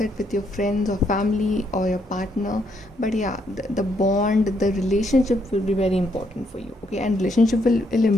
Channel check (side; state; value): both; normal; correlation 0.74